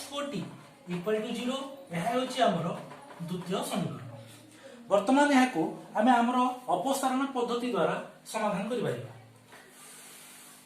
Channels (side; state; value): both; identical; correlation 1.00